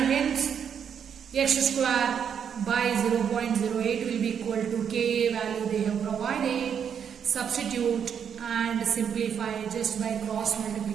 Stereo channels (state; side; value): quieter; left; 7.8 dB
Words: hence X square by 0.08 will be equal to Ka value they have provided. Substitute and simplify just by cross